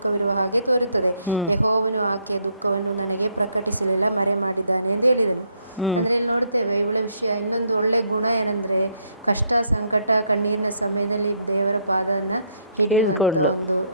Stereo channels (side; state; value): both; inverted; correlation -0.71